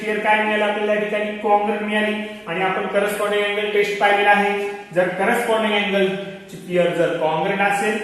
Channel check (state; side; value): identical; both; correlation 1.00